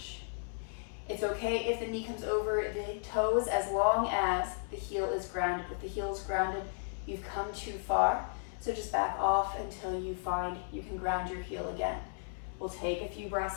It's okay if the knee comes over the toes as long as the heel is grounded. If the heel is grounded, you've come too far. So just back off until you find you can ground your heel again. We'll take a few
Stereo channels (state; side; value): silent; right; 55 dB below the other